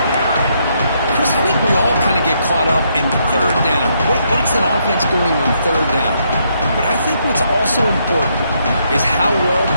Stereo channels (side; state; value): both; inverted; correlation -0.75